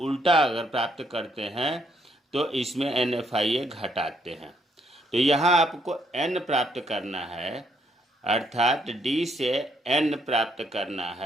उल्टा अगर प्राप्त करते हैं तो इसमें एनएफआईए घटाते हैं। तो यहाँ आपको एन प्राप्त करना है, अर्थात डी से एन प्राप्त करना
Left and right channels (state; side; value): normal; both; correlation 0.72